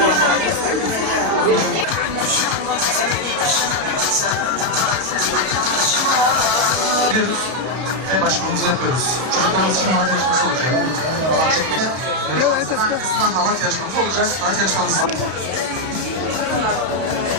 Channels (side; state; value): left; late; 32 ms